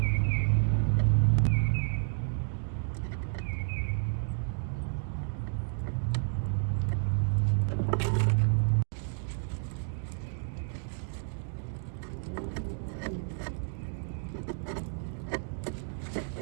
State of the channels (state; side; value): silent; left; digital silence